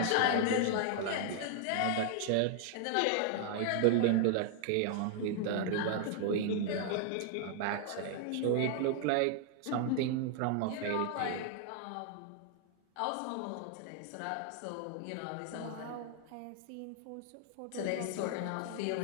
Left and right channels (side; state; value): both; different; correlation 0.00